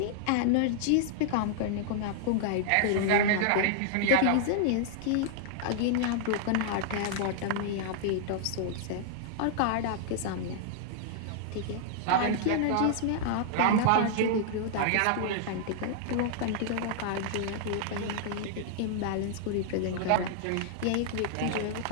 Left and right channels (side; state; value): both; different; correlation -0.01